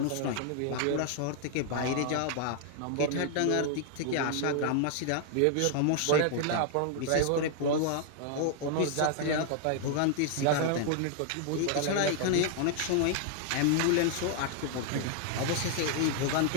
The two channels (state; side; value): different; both; correlation 0.00